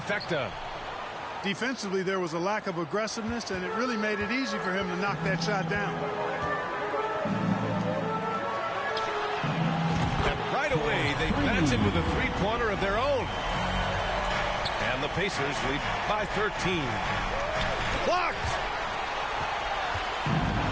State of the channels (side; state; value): both; identical; correlation 1.00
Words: Defensively, there was a lack of aggressiveness, and it really made it easy for him to knock that shot down. And right away, they match him with a 3-pointer of their own. And the Pacers lead by 13. Blocked!